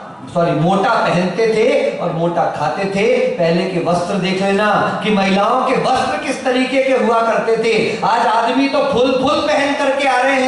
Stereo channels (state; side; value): identical; both; correlation 1.00